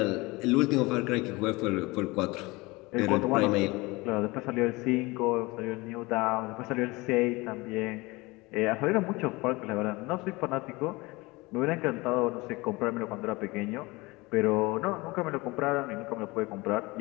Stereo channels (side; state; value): right; quieter; 23.2 dB